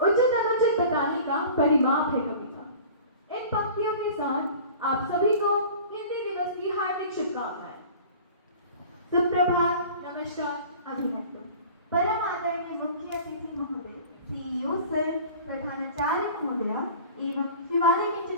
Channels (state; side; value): inverted; both; correlation -0.42